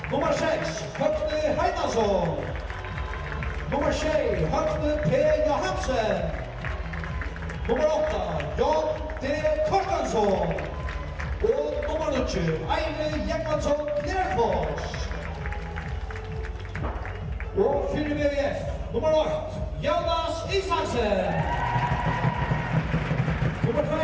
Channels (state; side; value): identical; both; correlation 1.00